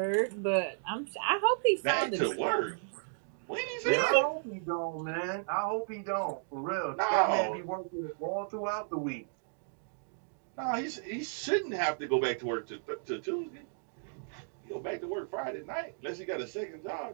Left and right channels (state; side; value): silent; left; digital silence